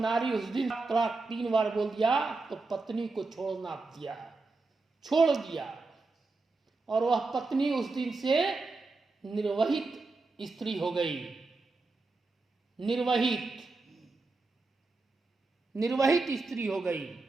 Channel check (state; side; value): quieter; left; 3.7 dB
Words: उस दिन तलाक 3 बार बोल दिया, तो पत्नी को छोड़ना दिया, छोड़ दिया। और वह पत्नी उस दिन से निर्वहित स्त्री हो गई। निर्वहित स्त्री हो गई।